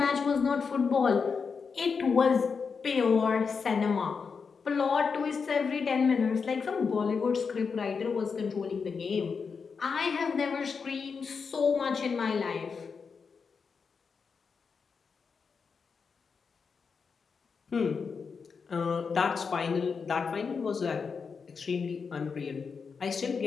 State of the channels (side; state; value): right; quieter; 5.5 dB